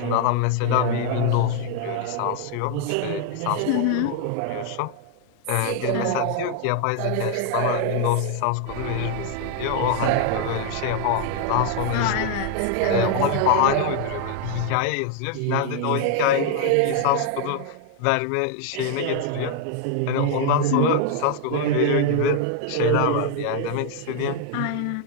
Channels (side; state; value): both; different; correlation 0.00